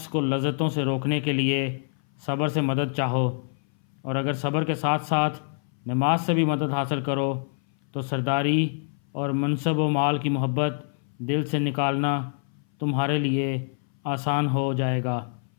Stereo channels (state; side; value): silent; right; 59 dB below the other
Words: کو لذتوں سے روکنے کے لیے صبر سے مدد چاہو، اور اگر صبر کے ساتھ ساتھ نماز سے بھی مدد حاصل کرو تو سرداری اور منصب و مال کی محبت دل سے نکالنا تمہارے لیے آسان ہو جائے گا۔